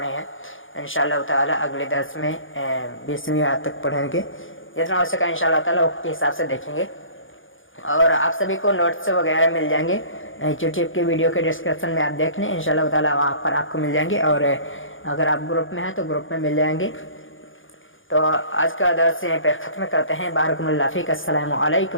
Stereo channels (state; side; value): late; right; 0.58 ms